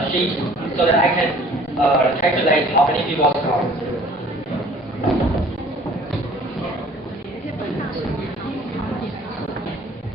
sheet so that I can calculate how many people come.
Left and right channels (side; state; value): both; normal; correlation 0.52